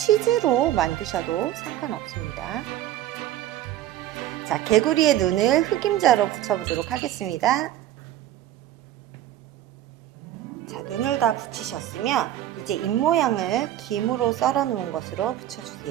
만드셔도 상관없습니다. 자, 개구리의 눈을 흑임자로 붙여보도록 하겠습니다. 자, 눈을 다 붙이셨으면 이제 입 모양을 김으로 썰어 놓은 것으로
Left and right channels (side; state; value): left; quieter; 12.9 dB